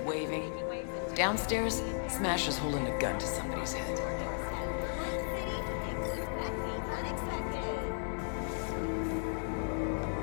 waving. Downstairs, Smasher's holding a gun to somebody's head.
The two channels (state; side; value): silent; right; digital silence